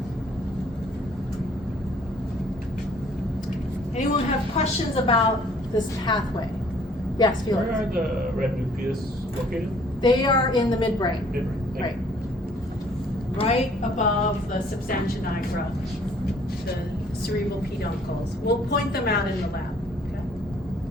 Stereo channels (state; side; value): normal; both; correlation 0.59